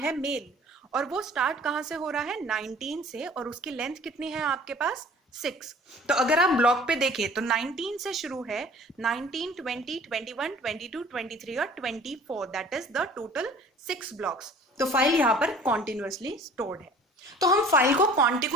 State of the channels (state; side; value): normal; both; correlation 0.48